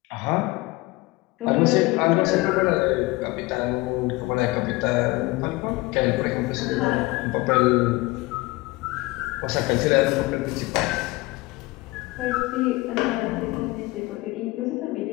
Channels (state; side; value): quieter; right; 21.6 dB